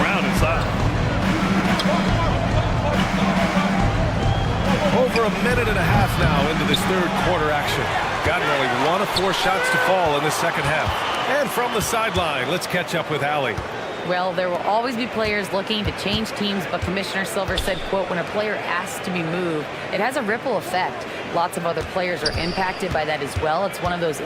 inside. Over a minute and a half now into this third quarter action. Gotten only 1 of 4 shots to fall in the second half. And from the sideline, let's catch up with Allie. Well, there will always be players looking to change teams, but Commissioner Silver said, quote, when a player asks to be moved, it has a ripple effect. Lots of other players are impacted by that as well. It's one of those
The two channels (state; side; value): identical; both; correlation 1.00